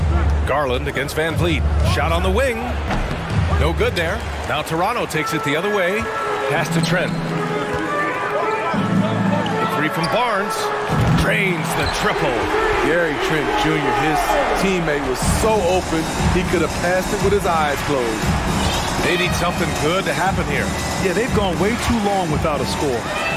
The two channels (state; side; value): identical; both; correlation 1.00